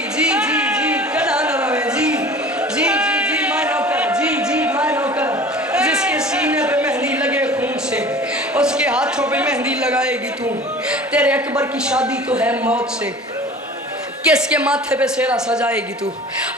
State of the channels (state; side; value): normal; both; correlation 0.42